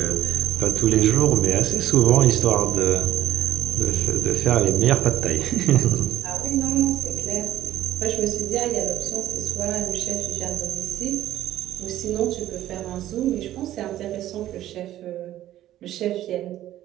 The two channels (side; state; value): left; quieter; 13.3 dB